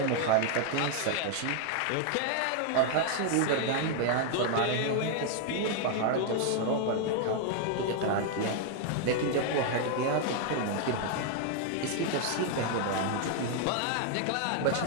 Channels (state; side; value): different; both; correlation 0.00